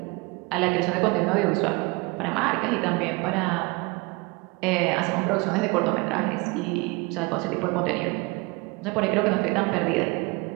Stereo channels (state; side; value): quieter; left; 26.0 dB